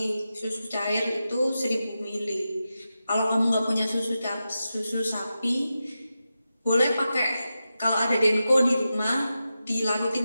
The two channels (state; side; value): inverted; both; correlation -0.91